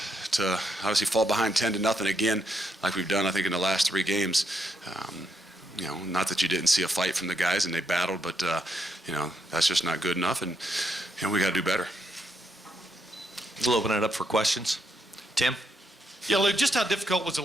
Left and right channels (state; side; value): normal; both; correlation 0.79